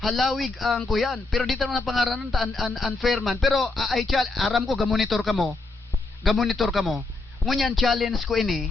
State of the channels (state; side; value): quieter; right; 3.3 dB